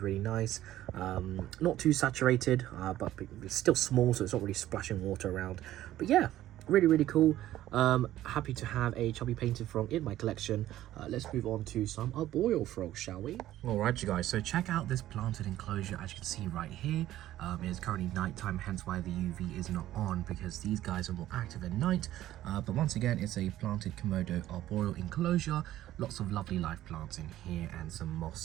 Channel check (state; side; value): quieter; left; 13.8 dB